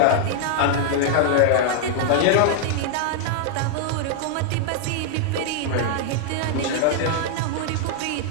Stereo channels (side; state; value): both; different; correlation 0.00